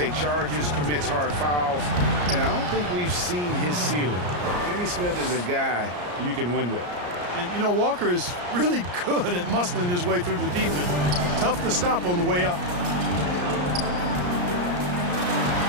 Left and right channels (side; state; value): left; late; 34 ms